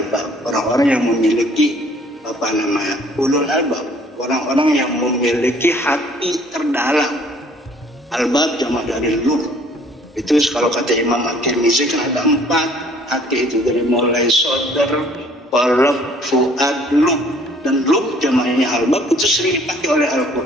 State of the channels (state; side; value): normal; both; correlation 0.58